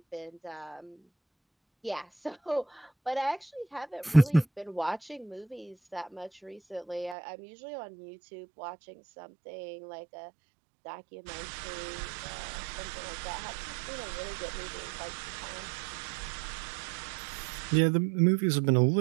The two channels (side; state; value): left; drops out; at 7.2 s